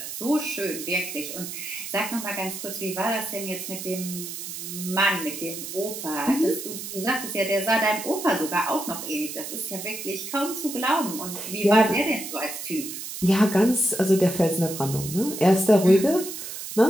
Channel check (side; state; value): right; noise; hiss, 8 dB below the sound